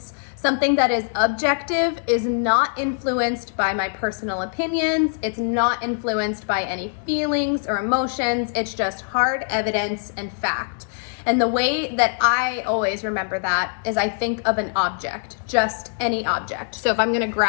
Something that is objective is not influenced by my personal opinions. It's not influenced by any feelings or emotions. It's just hard evidence and fact. And the way that I always remember that is I think of an object, just any object. So if I'm gonna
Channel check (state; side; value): silent; right; digital silence